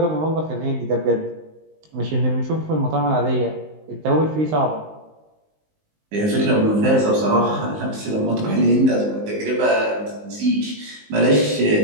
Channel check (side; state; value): left; late; 19 ms